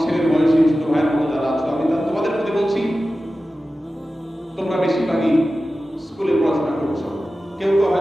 ছেলের বয়সী ছোট ভাইয়ের মতো যারা আছো, আমি তোমাদের প্রতি বলছি, তোমরা বেশিরভাগই স্কুলে পড়াশোনা করছো, কেউ কেউ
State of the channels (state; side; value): normal; both; correlation 0.94